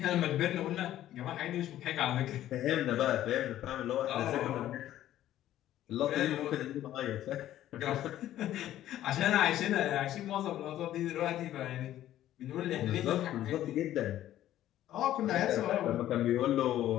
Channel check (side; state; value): right; quieter; 12.9 dB